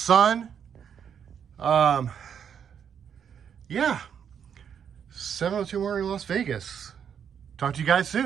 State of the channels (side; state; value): left; quieter; 8.0 dB